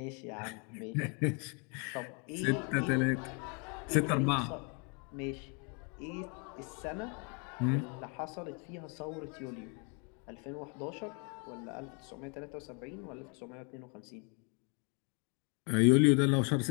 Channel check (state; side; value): quieter; right; 35.7 dB